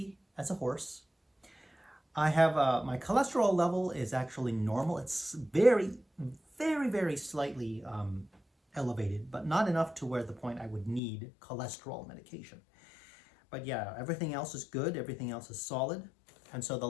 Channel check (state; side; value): drops out; right; at 11.0 s